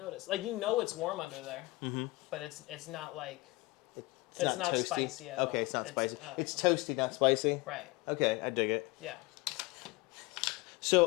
Like it's warm under there. But it's not like it's not spicy at all. Okay, it's not spicy. It's toasty, not spicy. Right. Okay, I dig it. Yeah.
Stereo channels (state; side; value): quieter; right; 22.4 dB